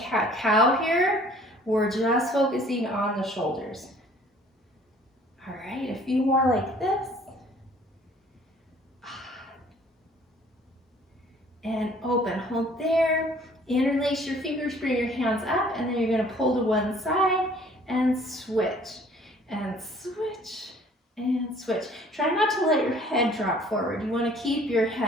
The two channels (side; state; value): both; normal; correlation 0.55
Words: here. We're just focusing on the shoulders. All right, a few more like this. And open, hold there. Interlace your fingers, bring your hands up, and then you're going to pull to one side and switch, and switch, and switch. Try not to let your head drop forward. You want to keep your